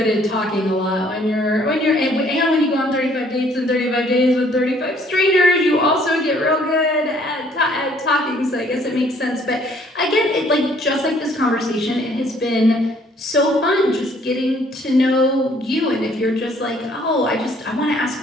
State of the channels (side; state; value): both; normal; correlation 0.61